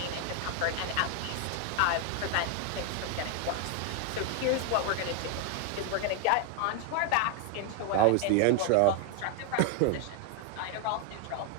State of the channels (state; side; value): different; both; correlation 0.01